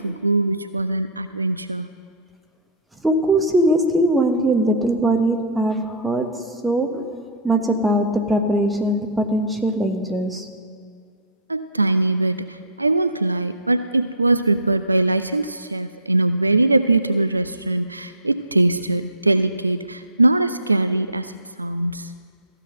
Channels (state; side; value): inverted; both; correlation -0.31